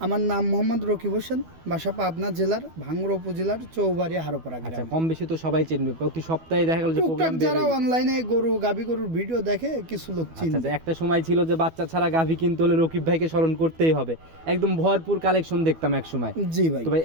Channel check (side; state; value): left; late; 12 ms